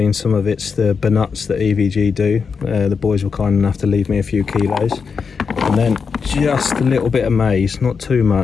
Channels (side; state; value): right; quieter; 5.7 dB